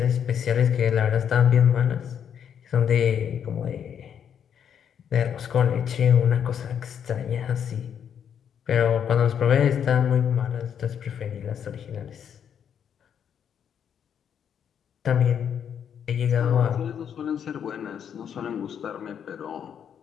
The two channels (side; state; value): right; quieter; 8.4 dB